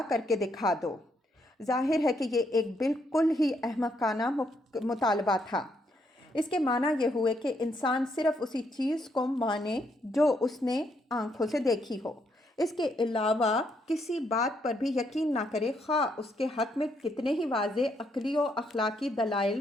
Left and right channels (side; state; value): both; normal; correlation 0.75